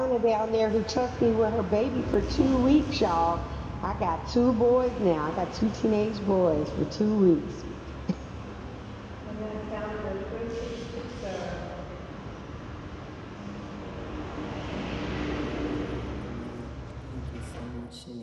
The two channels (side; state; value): both; identical; correlation 1.00